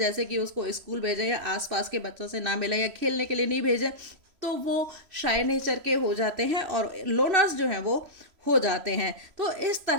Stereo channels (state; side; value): late; left; 3.0 ms